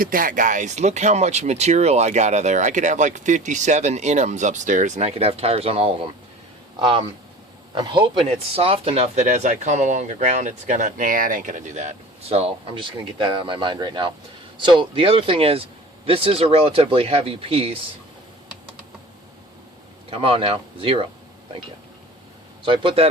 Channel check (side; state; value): both; normal; correlation 0.39